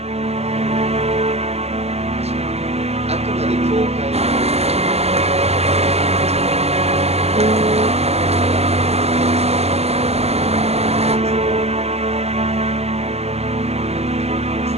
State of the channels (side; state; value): left; late; 0.30 ms